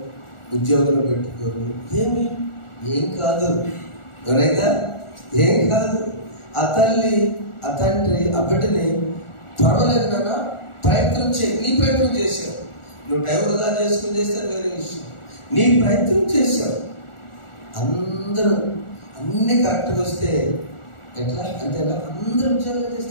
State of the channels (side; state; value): right; late; 1.4 ms